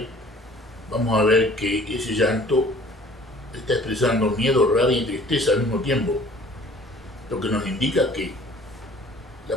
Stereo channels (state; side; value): normal; both; correlation 0.52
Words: vamos a ver que ese llanto está expresando miedo, rabia y tristeza al mismo tiempo, lo que nos indica que